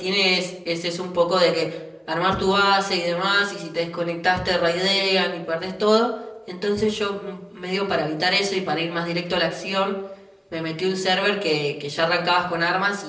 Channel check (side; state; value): both; identical; correlation 1.00